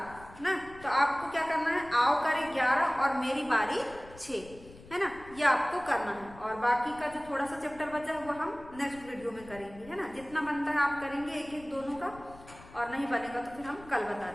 ना। तो आपको क्या करना है, आओ करें 11 और मेरी बारी 6, है ना। ये आपको करना है और बाकी का जो थोड़ा सा चैप्टर बचा है वो हम नेक्स्ट वीडियो में करेंगे, है ना। जितना बनता है आप करेंगे एक एक दोनों का, और नहीं बनेगा तो फिर हम कल बता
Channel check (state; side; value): noise; left; rumble, 20 dB below the sound